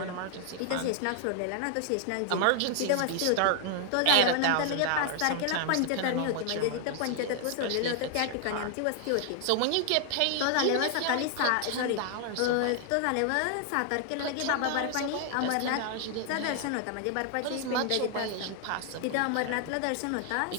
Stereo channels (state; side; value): different; both; correlation 0.00